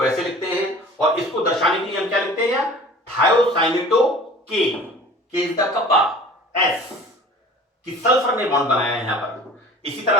ऐसे लिखते हैं, और इसको दर्शाने के लिए हम क्या लिखते हैं, थायोसाइनेटो के इज द कप्पा, एस, कि सल्फर ने बॉन्ड बनाया है यहां पर। इसी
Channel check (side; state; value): both; normal; correlation 0.44